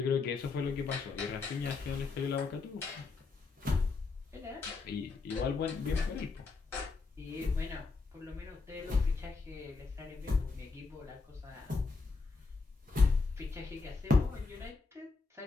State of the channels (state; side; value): quieter; right; 4.2 dB